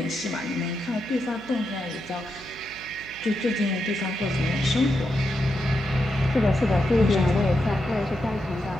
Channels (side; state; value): right; noise; hum, 21 dB below the sound